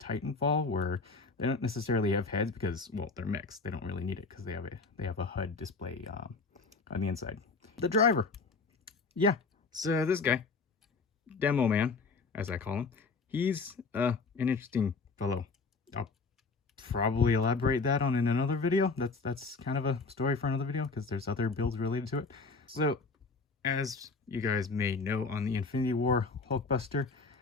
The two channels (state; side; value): quieter; right; 4.2 dB